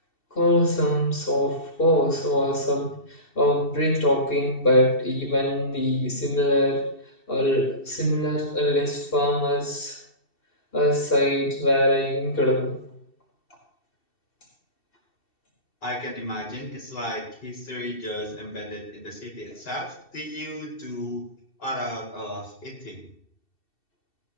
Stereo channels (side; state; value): right; late; 2.7 ms